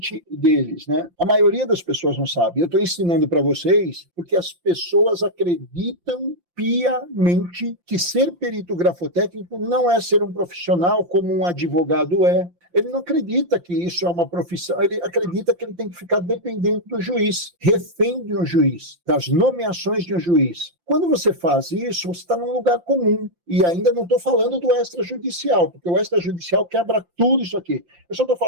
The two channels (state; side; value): late; left; 5.8 ms